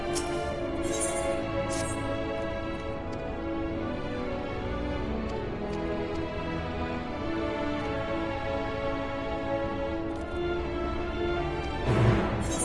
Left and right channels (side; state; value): both; identical; correlation 1.00